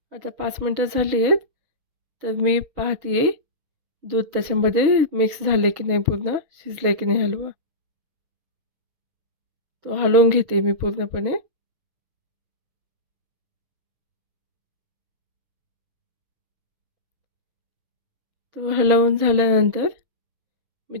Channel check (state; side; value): late; left; 6.3 ms